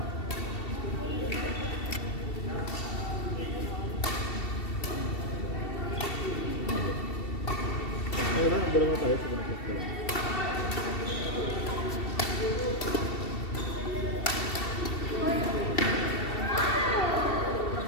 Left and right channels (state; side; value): late; right; 2.7 ms